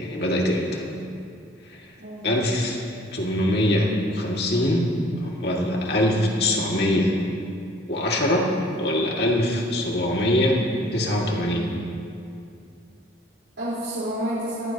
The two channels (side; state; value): both; normal; correlation 0.54